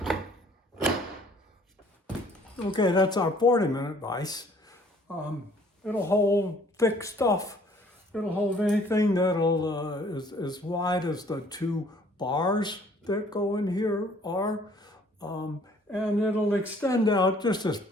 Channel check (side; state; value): both; normal; correlation 0.58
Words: Okay, that's our 40-minute vise. It'll hold thick stuff. It'll hold anything that'll is as wide as the two bars that go in here are. And it'll extend out just as